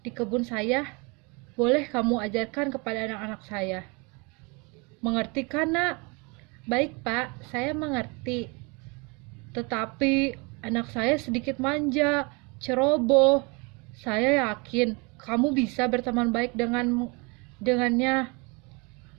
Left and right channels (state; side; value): quieter; left; 29.6 dB